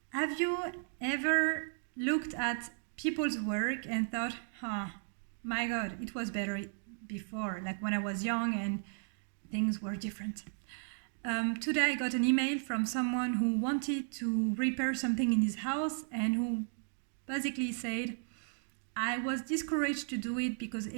Have you ever looked at people's work and thought, my God, it was better before, like when I was young and things were different? Today I got an email from someone who wanted to repair something in his house and who basically said, I was discouraged to do it because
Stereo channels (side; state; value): left; silent; digital silence